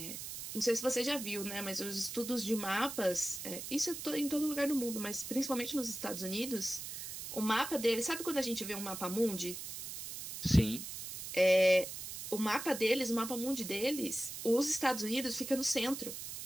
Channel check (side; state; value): right; noise; hiss, 8 dB below the sound